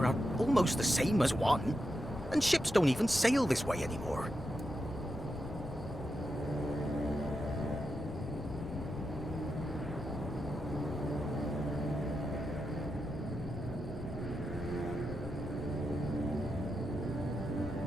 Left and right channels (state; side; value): noise; left; rumble, 13 dB below the sound